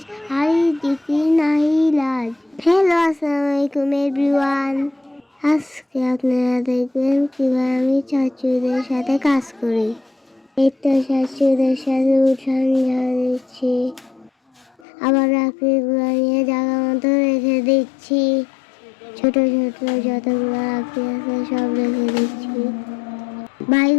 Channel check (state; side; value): drops out; right; at 14.8 s